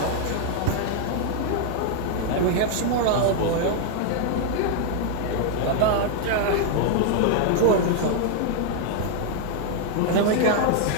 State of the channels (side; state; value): both; different; correlation 0.00